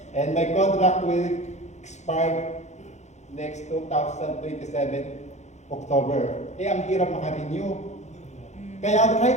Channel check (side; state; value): right; late; 0.33 ms